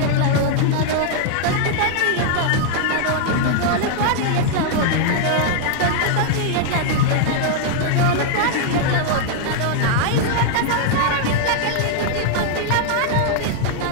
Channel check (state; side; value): different; both; correlation -0.01